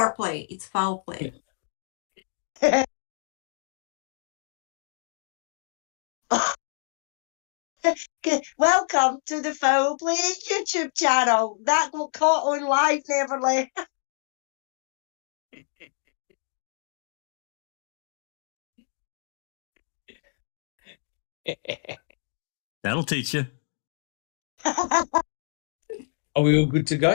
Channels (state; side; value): silent; right; digital silence